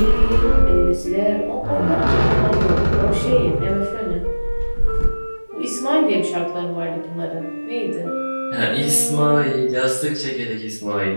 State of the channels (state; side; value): inverted; both; correlation -1.00